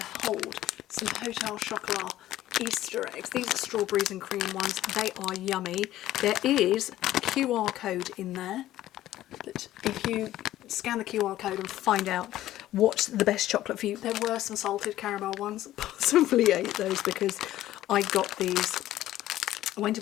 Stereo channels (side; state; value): right; quieter; 14.1 dB